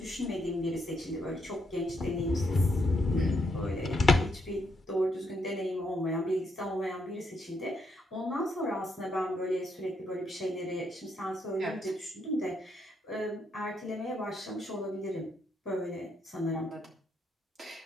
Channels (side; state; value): both; normal; correlation 0.77